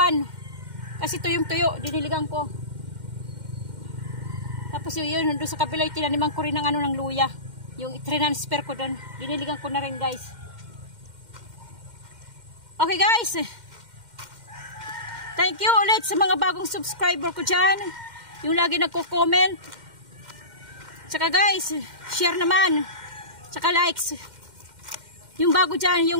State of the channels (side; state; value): left; late; 2.1 ms